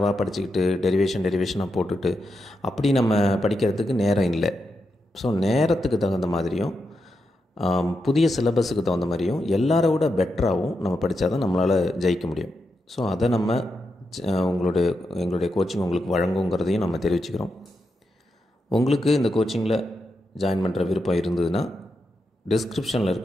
படிச்சுக்கிட்டு டெரிவேஷனாக போட்டுட்டு அப்படி நம்ம படிக்கிறதுக்கு நேரம் இல்லை. ஸோ நேரத்துக்கு தகுந்த மாதிரியும் புதிய சிலபஸுக்கு தகுந்த மாதிரியும் எல்லாரை விட பெட்டராகவும் நம்ம படித்தா தான் நம்மளால் ஜெயிக்க முடியும். ஸோ அதை நம்ம எங்களுடைய கோச்சிங் உங்களுக்கு வழங்குங்கிறதையும் நம்ம தெரிவிச்சுக்கிறோம். உங்களுக்கு இந்த கோச்சிங்கில் ஜாயின் பண்ணுற விருப்பம் இருந்ததுன்னா டிஸ்கிரிப்ஷனில்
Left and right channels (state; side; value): normal; both; correlation 0.85